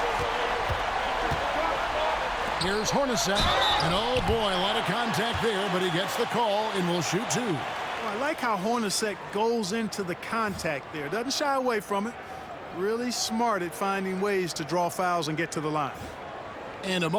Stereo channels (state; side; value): identical; both; correlation 1.00